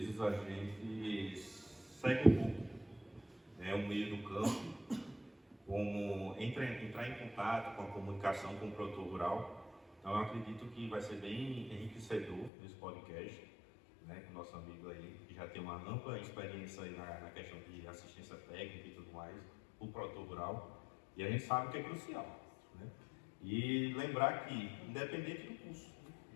a gente segue um pouco o meio do campo, como entrar em contato com a comunicação com o produtor rural. Então eu acredito que vai ser bem enriquecedor esse podcast, com o nosso amigo aí, que já tem uma ampla experiência aí na questão de assistência técnica e tudo mais, o produtor rural, e a gente sabe que é crucial. E lembrar que, independente do curso,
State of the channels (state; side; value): drops out; right; at 12.5 s